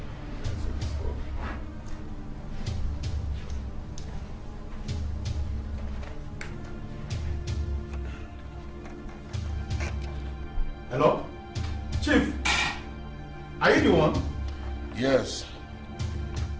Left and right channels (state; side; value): identical; both; correlation 1.00